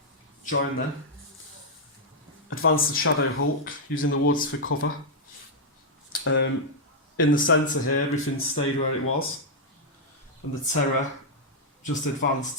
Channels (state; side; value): normal; both; correlation -0.04